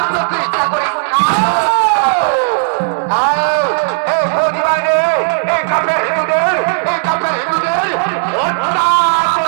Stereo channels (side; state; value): left; silent; digital silence